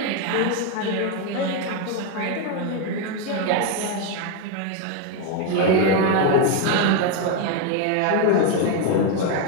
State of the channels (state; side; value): different; both; correlation 0.02